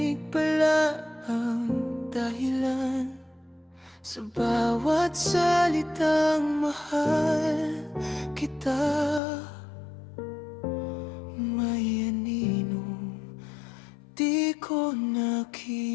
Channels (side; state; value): right; drops out; at 9.2 s